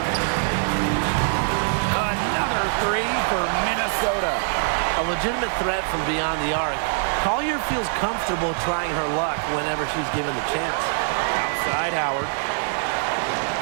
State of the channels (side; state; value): left; silent; digital silence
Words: Another three for Minnesota. A legitimate threat from beyond the arc. Collier feels comfortable trying her luck whenever she's given the chance. Outside Howard.